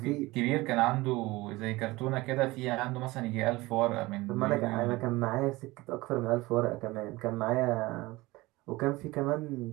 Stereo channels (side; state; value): left; quieter; 20.7 dB